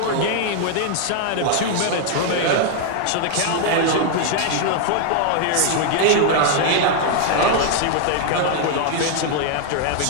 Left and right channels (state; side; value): different; both; correlation 0.00